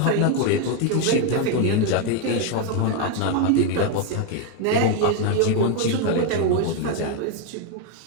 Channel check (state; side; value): different; both; correlation 0.01